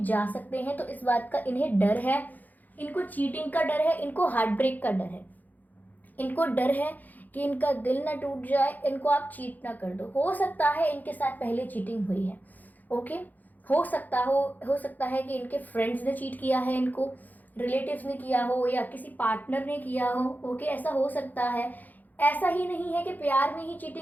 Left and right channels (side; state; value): right; late; 0.083 ms